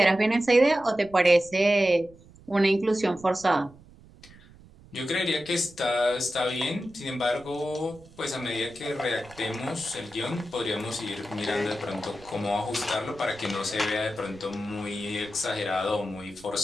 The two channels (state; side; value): noise; right; rumble, 23 dB below the sound